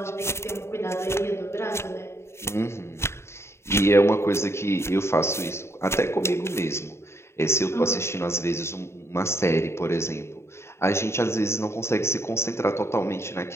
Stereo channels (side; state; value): right; late; 0.13 ms